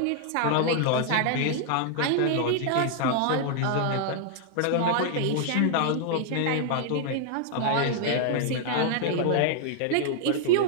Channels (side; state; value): both; different; correlation 0.00